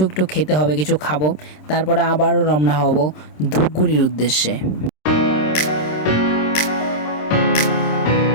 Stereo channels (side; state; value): right; late; 26 ms